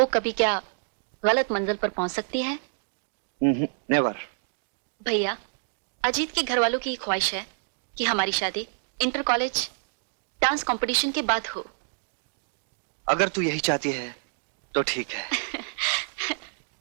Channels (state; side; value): silent; left; digital silence